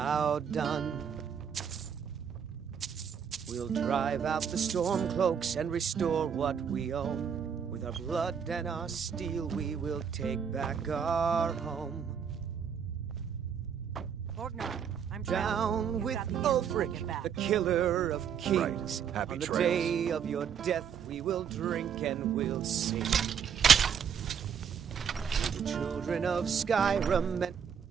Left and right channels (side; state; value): left; quieter; 7.5 dB